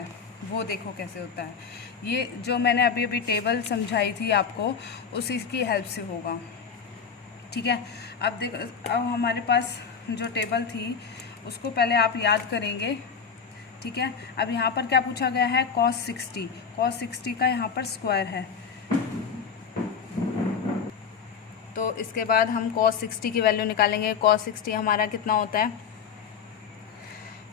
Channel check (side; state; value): right; quieter; 6.4 dB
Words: वो देखो कैसे होता है। ये जो मैंने अभी टेबल समझाई थी आपको, उसी की हेल्प से होगा, ठीक है। अब देखो, अब हमारे पास जो टेबल थी उसको पहले आप याद करेंगे, ठीक है। अब यहाँ पर क्या पूछा गया है cos 60 का यहाँ पर स्क्वायर है, तो इसके बाद हम cos 60 की वैल्यू निकालेंगे। cos 60 हमारा कितना होता है